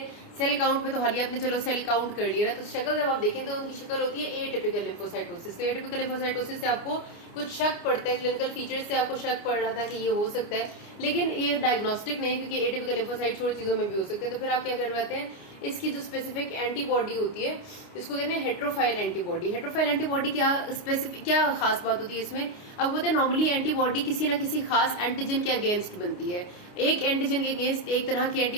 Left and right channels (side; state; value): right; late; 29 ms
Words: सेल काउंट में तो हालिया आपने चलो सेल काउंट कर लिया ना, तो शक्ल जब आप देखें तो उनकी शक्ल होती है एटिपिकल लिम्फोसाइटोसिस। तो एटिपिकल लिम्फोसाइटोसिस से आपको कुछ शक पड़ता है, क्लिनिकल फीचर्स से आपको शक पड़ रहा था कि ये हो सकता है, लेकिन ये डायग्नोस्टिक नहीं, क्योंकि एटिपिकल लिम्फोसाइट्स और चीजों में भी हो सकते हैं। तो फिर आप क्या करवाते हैं, इसकी जो स्पेसिफिक एंटीबॉडी होती है इसको कहते हैं हेट्रोफाइल एंटीबॉडी। हेट्रोफाइल एंटीबॉडी क्या खास बात होती है इसमें? अब होता है नॉर्मली एंटीबॉडी किसी ना किसी खास एंटीजन के अगेंस्ट बनती है। एक एंटीजन के अगेंस्ट एक तरह की